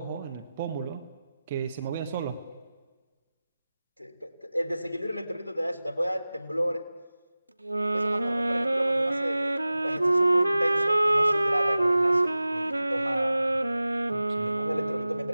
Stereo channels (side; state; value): both; inverted; correlation -0.96